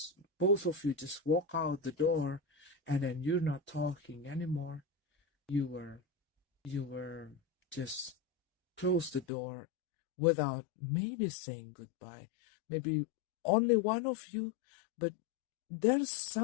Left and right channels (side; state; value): right; drops out; at 9.2 s